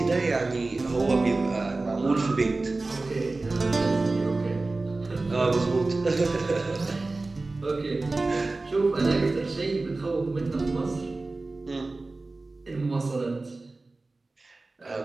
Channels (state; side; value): quieter; left; 3.3 dB